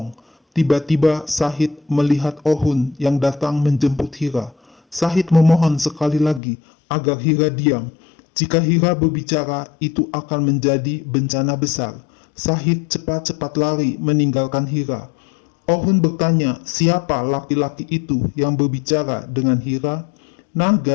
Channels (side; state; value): right; drops out; at 6.4 s